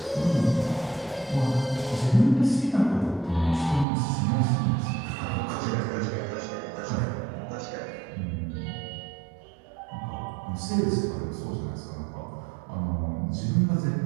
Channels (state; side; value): drops out; left; at 3.9 s